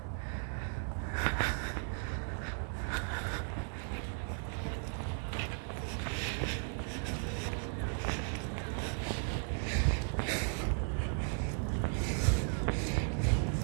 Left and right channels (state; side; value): silent; left; 54 dB below the other